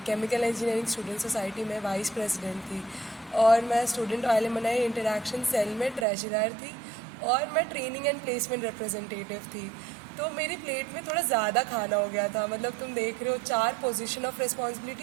केमिकल इंजीनियरिंग स्टूडेंट सोसाइटी में वाइस प्रेसिडेंट थी और मैं स्टूडेंट एलुमनाई इंटरैक्शन सेल में ट्रेजरर थी और मैं ट्रेनिंग एंड प्लेसमेंट रिप्रेजेंटेटिव थी। तो मेरी प्लेट में थोड़ा ज़्यादा खाना हो गया था, मतलब तुम देख रहे हो 4 पोजीशन ऑफ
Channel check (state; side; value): drops out; left; at 6.1 s